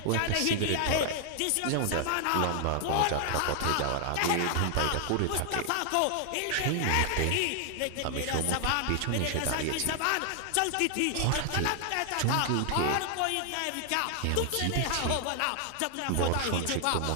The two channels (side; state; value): both; different; correlation 0.00